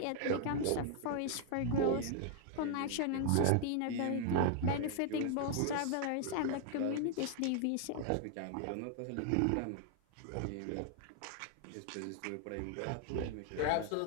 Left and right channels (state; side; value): different; both; correlation 0.00